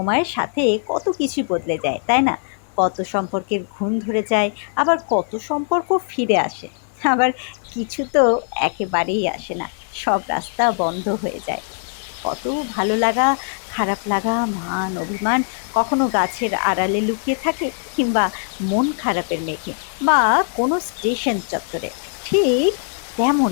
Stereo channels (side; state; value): right; silent; digital silence